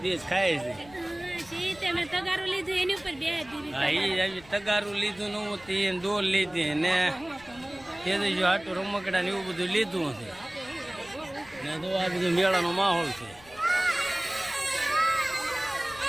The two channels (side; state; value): left; noise; rumble, 23 dB below the sound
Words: દેશ ખાય છે. તગારું લીધું એની ઉપર તગારું લીધું નવું તે દોર લીધી ને તેજસ્વી હાટું રમકડા ને એવું બધું લીધું છે ને. તો આ બધું મેળાનો માહોલ છે.